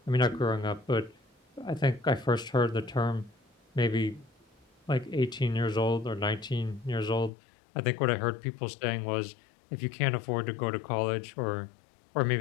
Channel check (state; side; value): drops out; right; at 7.3 s